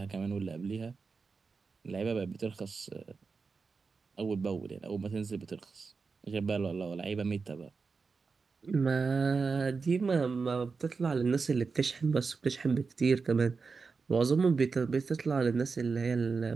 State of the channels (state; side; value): quieter; left; 4.7 dB